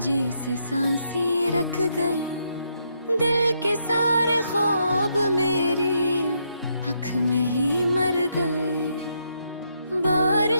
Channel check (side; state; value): both; inverted; correlation -0.77